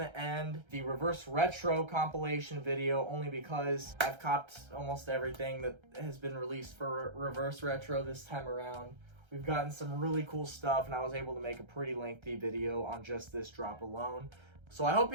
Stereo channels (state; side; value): late; left; 1.3 ms